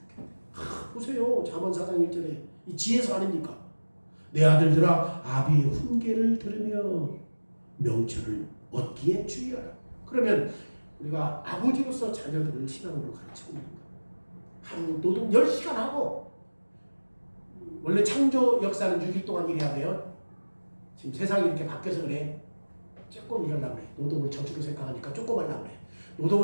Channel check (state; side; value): inverted; both; correlation -1.00